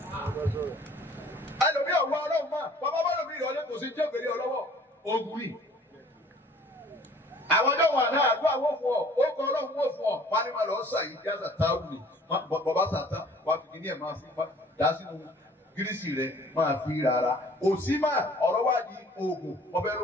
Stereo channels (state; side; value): normal; both; correlation 0.53